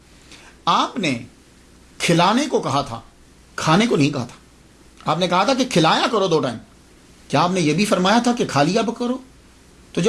آپ نے کھلانے کو کہا تھا کھانے کو نہیں کہا تھا. آپ نے کہا تھا کہ کھلایا کرو 2 ٹائم. کیا آپ نے یہ بھی فرمایا تھا کہ کھا لیا کرو؟ تو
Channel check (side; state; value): both; identical; correlation 1.00